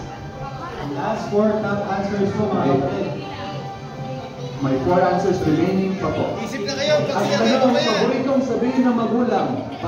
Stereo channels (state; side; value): identical; both; correlation 1.00